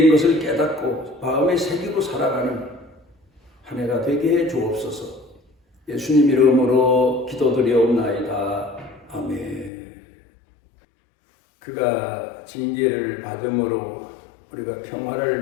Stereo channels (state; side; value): drops out; right; at 9.7 s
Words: 것을 깨닫고 마음에 새기고 살아가는 한 해가 되게 해 주옵소서. 예수님 이름으로 기도드리옵나이다. 아멘. 그가 징계를 받음으로 우리가 평화를